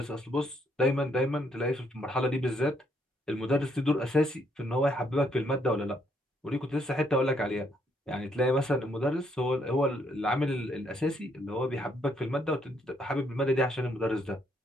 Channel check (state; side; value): normal; both; correlation 0.72